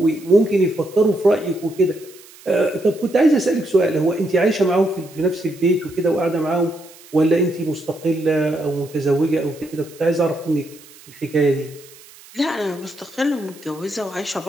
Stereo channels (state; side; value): noise; right; hiss, 22 dB below the sound